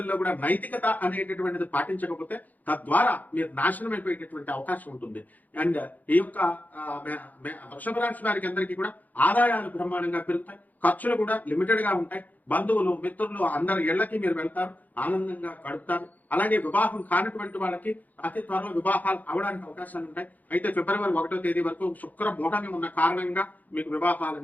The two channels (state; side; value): late; right; 0.081 ms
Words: కూడా నైతికత అనేటటువంటిది పాటించకపోతే తద్వారా మీరు నాశనం అయిపోయేటటువంటి అవకాశం ఉంటుంది. అండ్ ఈ యొక్క వృషభ రాశి వారికి అందరికీ కూడా ఆదాయాలు బ్రహ్మాండంగా పెరుగుతాయి, ఖర్చులు కూడా లిమిటెడ్ గా ఉంటాయి. బంధువులు మిత్రులు అందరి ఇళ్లకి మీరు వెళ్తారు, ఆనందంగా గడుపుతారు. అలాగే వివాహం కానటువంటి వాళ్ళకి అతి త్వరలో వివాహాలు అవడానికి అవకాశాలు ఉంటాయి. అయితే ఫిబ్రవరి 1వ తేదీ వరకు శుక్ర మూఢమి ఉన్న కారణంగా మీకు వివాహాలు